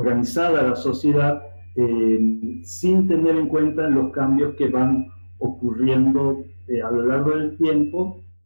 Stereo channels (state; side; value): inverted; both; correlation -1.00